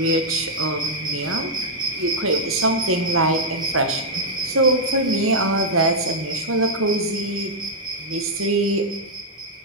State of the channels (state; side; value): normal; both; correlation -0.03